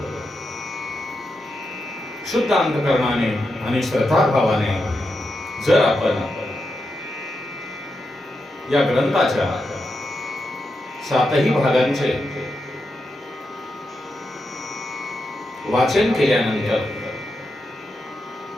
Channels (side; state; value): both; normal; correlation 0.86